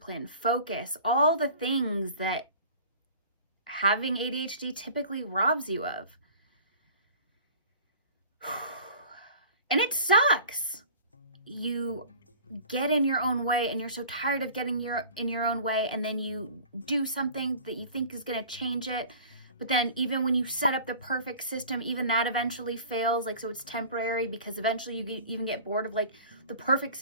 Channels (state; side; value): inverted; both; correlation -0.43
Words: focus, all the things that having ADHD typically robs you of. And it sucks. You get in your own way and you're so tired of getting in your own way, and then you do something that you think is going to change it. But then even when you set up the perfect system, even that eventually fails. Like, so it's temporary because eventually you even get bored of like the perfect